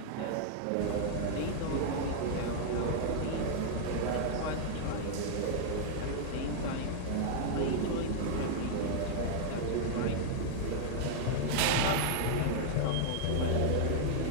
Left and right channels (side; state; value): both; different; correlation -0.01